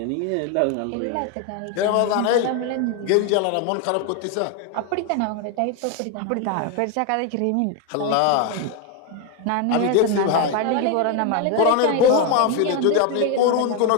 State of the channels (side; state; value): both; different; correlation 0.01